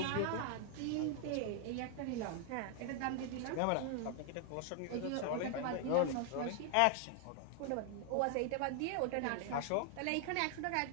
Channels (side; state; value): both; different; correlation 0.00